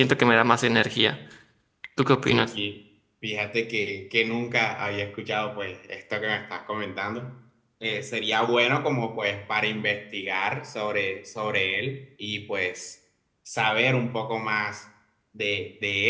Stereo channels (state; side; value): identical; both; correlation 1.00